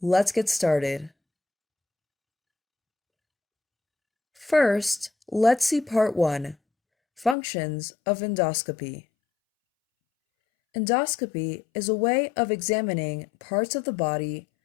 Let's get started. First, let's see part 1, Functions of Endoscopy. Endoscopy is a way of examining parts of the body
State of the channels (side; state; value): right; drops out; at 7.4 s